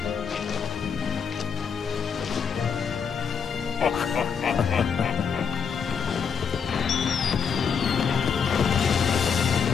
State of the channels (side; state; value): right; quieter; 6.5 dB